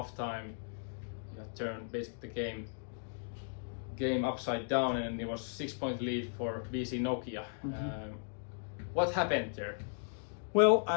you had turned basically the game upside down, and it was 6-point lead for BC Nokia. What happened there? Well,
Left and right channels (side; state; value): right; silent; digital silence